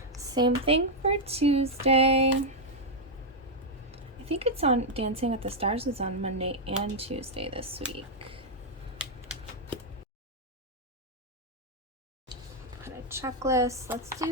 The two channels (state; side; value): normal; both; correlation -0.02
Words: Same thing for Tuesday. I think it's on Dancing with the Stars is on Monday and Tuesday this week. Put a checklist. Let's